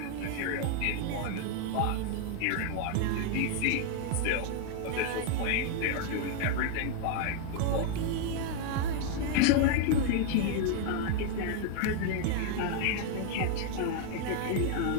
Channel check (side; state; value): both; different; correlation 0.00